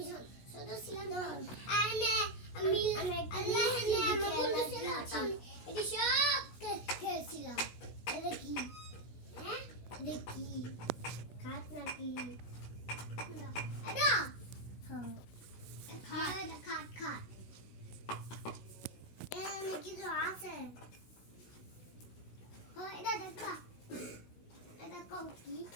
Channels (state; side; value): late; right; 16 ms